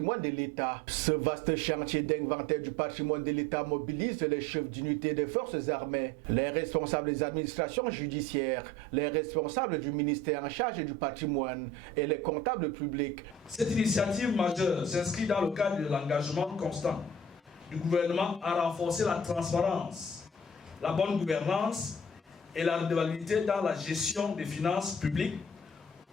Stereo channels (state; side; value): normal; both; correlation 0.46